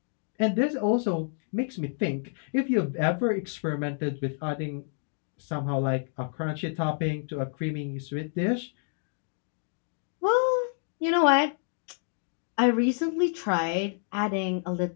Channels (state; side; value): silent; right; digital silence